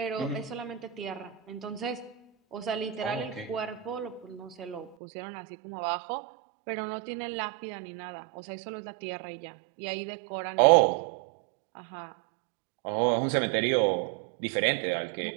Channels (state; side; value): drops out; left; at 5.0 s